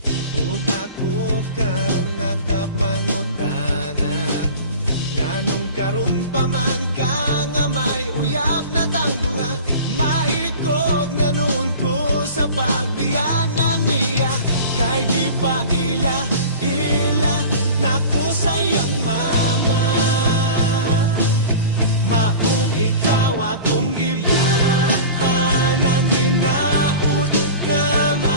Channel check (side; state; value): both; inverted; correlation -0.37